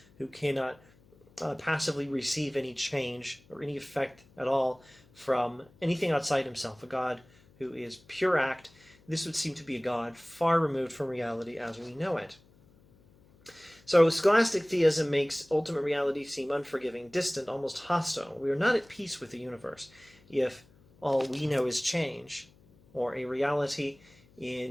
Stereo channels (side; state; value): left; noise; hum, 28 dB below the sound